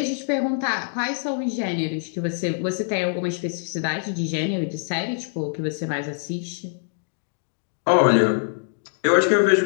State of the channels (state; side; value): silent; right; digital silence